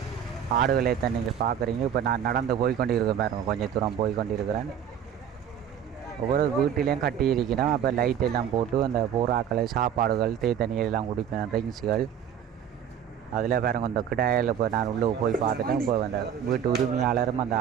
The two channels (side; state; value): left; quieter; 8.8 dB